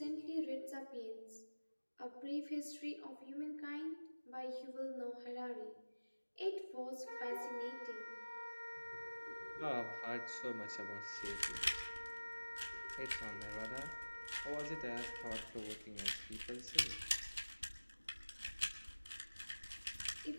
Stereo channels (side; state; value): both; inverted; correlation -1.00